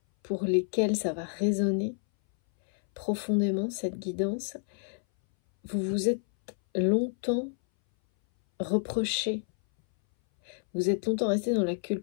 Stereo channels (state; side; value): silent; right; 59 dB below the other